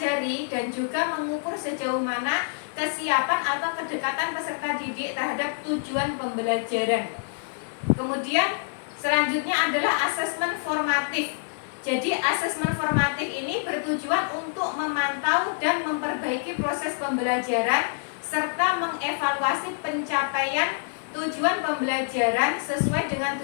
dan juga mengukur sejauh mana kesiapan atau kedekatan peserta didik terhadap tujuan pembelajaran. Kemudian selanjutnya adalah asesmen formatif. Jadi asesmen formatif ini bertujuan untuk memantau dan memperbaiki proses pembelajaran serta mengevaluasi pencapaian tujuan pembelajaran sesuai dengan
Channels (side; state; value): right; silent; digital silence